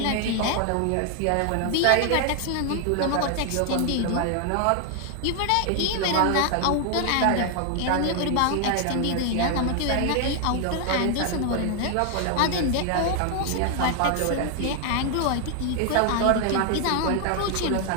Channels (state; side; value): different; both; correlation 0.00